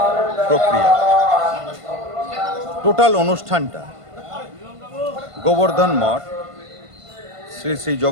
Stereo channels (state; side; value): late; left; 1.5 ms